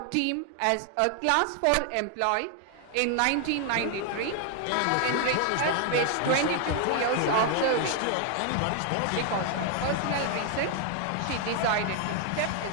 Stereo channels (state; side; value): different; both; correlation 0.00